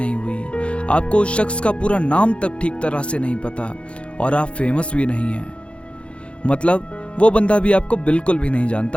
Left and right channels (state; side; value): late; right; 0.059 ms